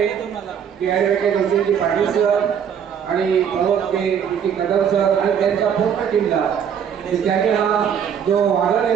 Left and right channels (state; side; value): quieter; left; 8.0 dB